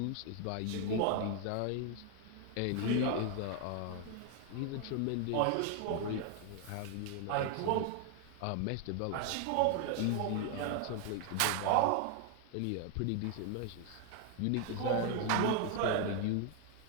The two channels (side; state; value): both; different; correlation 0.00